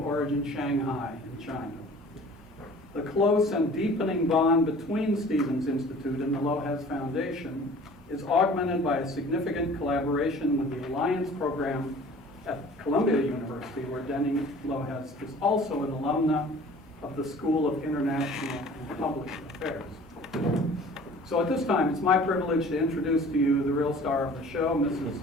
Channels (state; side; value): normal; both; correlation 0.47